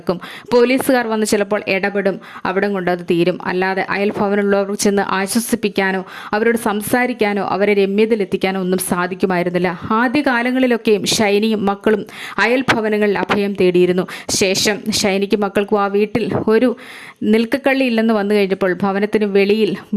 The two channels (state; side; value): identical; both; correlation 1.00